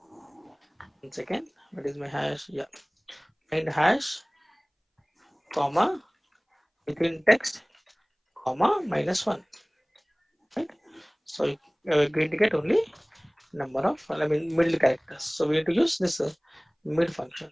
one second, what is my hash? Yeah, find hash, comma, within text, comma, minus 1, right? So we're going to get only number of, I mean, middle characters. So we have to use this mid function,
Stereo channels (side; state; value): both; identical; correlation 1.00